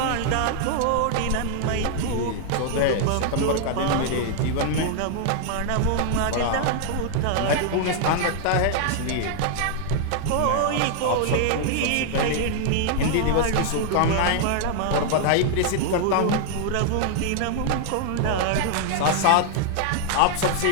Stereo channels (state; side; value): different; both; correlation 0.00